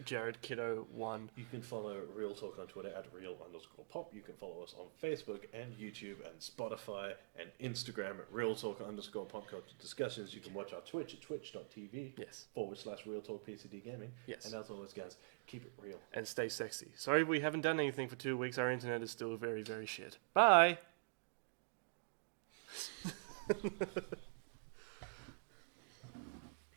JaredKiddo1. You can follow Real Talk on Twitter at Real_Pop. You can follow us on Facebook and YouTube and Spotify and Instagram at Real Talk_Pop Culture Discussions. You can watch our Twitch at twitch.tv Yes. /Real Talk PCD Gaming. Yes. And as always, guys, keep it real. And stay sexy. Sorry we haven't done anything for 2 weeks. Our internet is still very, very shit. Bye!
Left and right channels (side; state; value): left; quieter; 39.4 dB